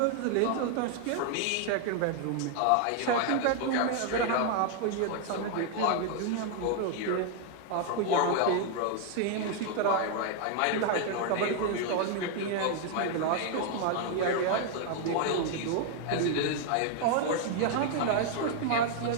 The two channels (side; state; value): both; different; correlation 0.00